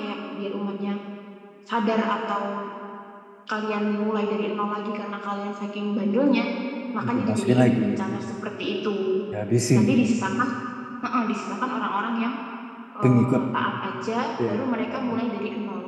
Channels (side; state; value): both; identical; correlation 1.00